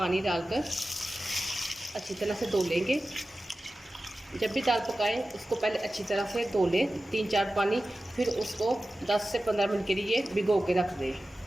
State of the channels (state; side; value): normal; both; correlation 0.95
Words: डालकर अच्छी तरह से धो लेंगे। जब भी दाल पकाएं उसको पहले अच्छी तरह से धो लें 3-4 पानी, फिर उसको 10 से 15 मिनट के लिए भिगो के रख दें।